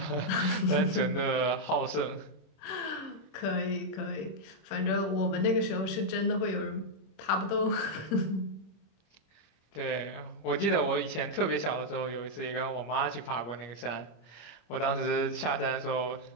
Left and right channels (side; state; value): right; late; 25 ms